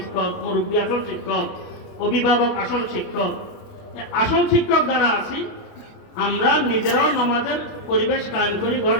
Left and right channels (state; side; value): late; right; 28 ms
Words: মুরব্বী আসল শিক্ষক, অভিভাবক আসল শিক্ষক। আসল শিক্ষক যারা আছি, আমরা নিজেরাও নামাজের পরিবেশ কায়েম করি